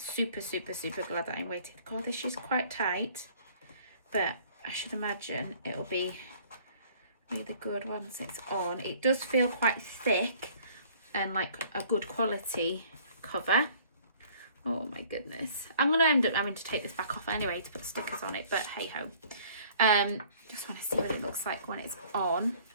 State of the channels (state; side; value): inverted; both; correlation -0.55